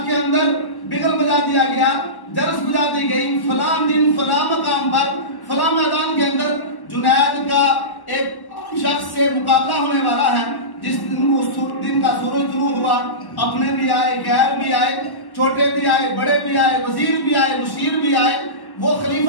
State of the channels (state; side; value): late; right; 1.1 ms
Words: کے اندر بگل بجا دیا گیا، جرس بجا دی گئی. فلاں دن فلاں مقام پر فلاں میدان کے اندر جنید کا ایک شخص سے مقابلہ ہونے والا ہے. جس دن کا سورج طلوع ہوا، اپنے بھی آئے، غیر بھی آئے، چھوٹے بھی آئے، بڑے بھی آئے، وزیر بھی آئے، مشیر بھی آئے، وہ